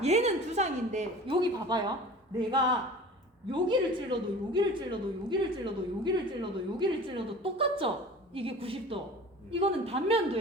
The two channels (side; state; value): both; normal; correlation 0.40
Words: 얘는 두상인데 여기 봐봐요. 내가 여기를 찔러도 똑같죠? 이게 90도. 이거는